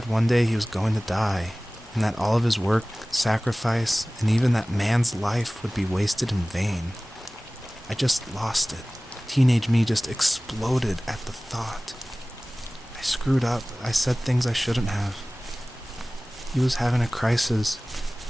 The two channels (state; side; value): normal; both; correlation 0.98